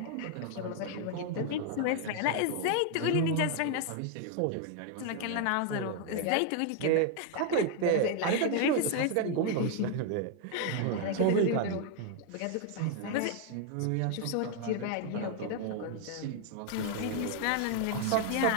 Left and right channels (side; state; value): both; different; correlation 0.00